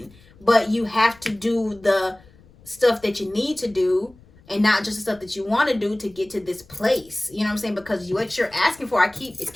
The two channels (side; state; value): left; noise; rumble, 26 dB below the sound